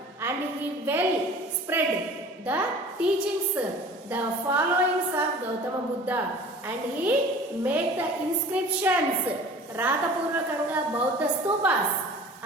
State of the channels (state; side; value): normal; both; correlation 0.44